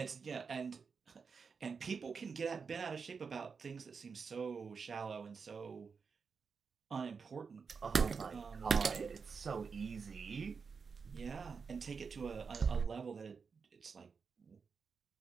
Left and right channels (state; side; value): quieter; left; 5.5 dB